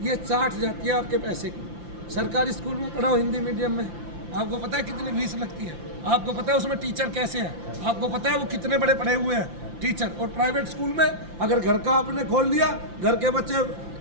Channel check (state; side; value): late; left; 5.8 ms